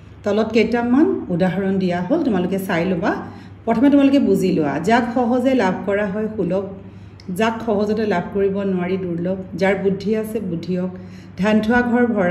তলত কেইটামান উদাহৰণ দিয়া হ'ল, তোমালোকে চাই ল'বা। প্ৰথমে তোমালোকে বুজি লোৱা, যাক সহজে লাভ কৰা হয় সুলভ, যাক সহজতে লাভ কৰিব নোৱাৰি দুৰ্লভ, যাৰ বুদ্ধি আছে বুদ্ধিয়ক, ধান থোৱা ঘৰ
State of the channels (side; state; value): both; identical; correlation 1.00